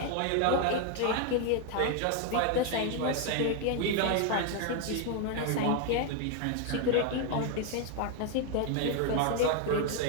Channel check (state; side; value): different; both; correlation 0.01